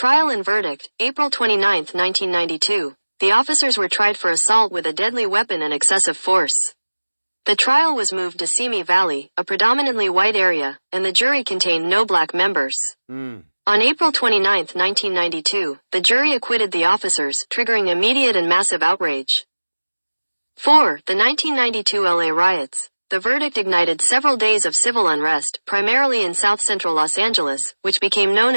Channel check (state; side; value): inverted; both; correlation -1.00